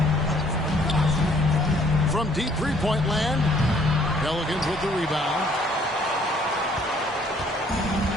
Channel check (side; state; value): both; normal; correlation 0.62